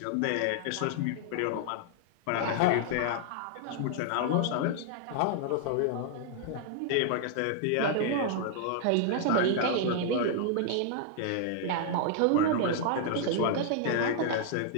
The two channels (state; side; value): different; both; correlation -0.01